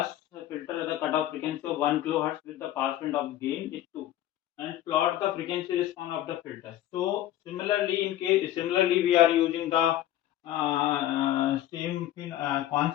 filter with a cutoff frequency of 1 kilohertz with the pass band of gain is 2, and plot the frequency response of the filter. So similarly we are using the same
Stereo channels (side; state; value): right; quieter; 13.2 dB